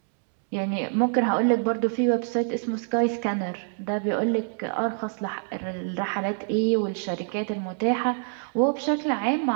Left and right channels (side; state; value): left; silent; 61 dB below the other